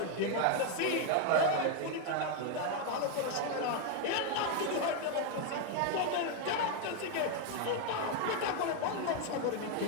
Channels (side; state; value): both; different; correlation 0.01